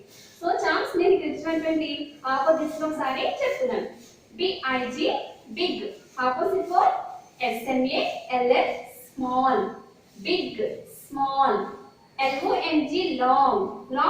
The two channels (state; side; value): identical; both; correlation 1.00